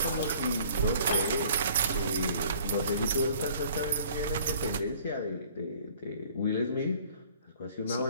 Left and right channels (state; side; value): inverted; both; correlation -0.53